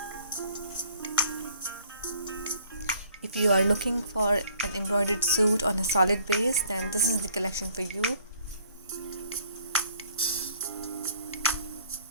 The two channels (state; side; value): inverted; both; correlation -0.60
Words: If you are looking for an embroidered suit on a solid base, then this is the collection for you.